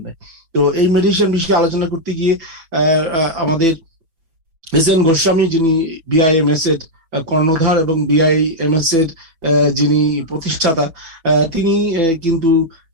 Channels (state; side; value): late; left; 6.1 ms